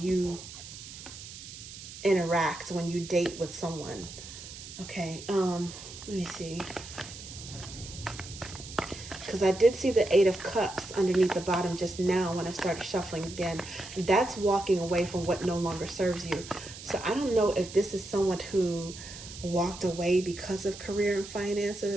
interact when you date with someone. Okay, let me see. Because I did see the 8 of Cups underneath the bottom just now when I started shuffling again. That's walking away from what no longer serves you. So I don't know if this is someone who walked away because of career and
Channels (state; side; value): noise; right; hiss, 13 dB below the sound